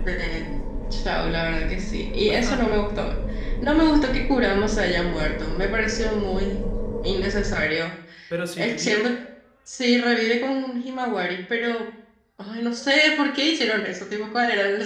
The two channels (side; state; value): both; identical; correlation 1.00